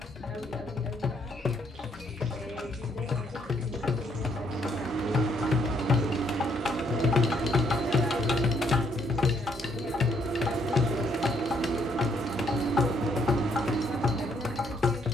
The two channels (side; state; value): both; normal; correlation 0.70